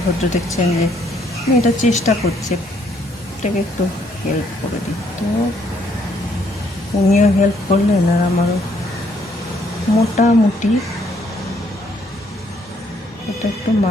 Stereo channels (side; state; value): both; normal; correlation 0.68